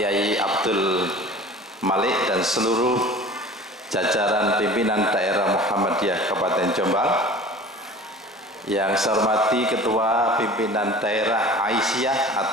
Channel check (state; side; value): normal; both; correlation 0.41